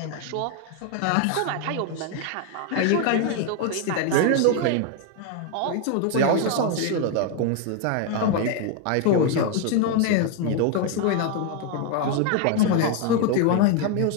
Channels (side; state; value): both; different; correlation 0.01